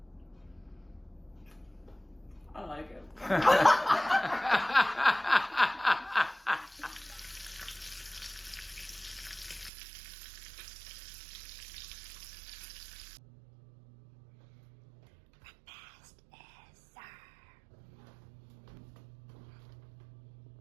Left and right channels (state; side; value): drops out; left; at 9.7 s